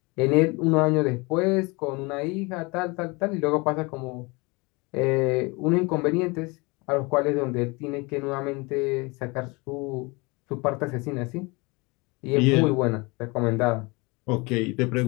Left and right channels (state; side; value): quieter; right; 26.8 dB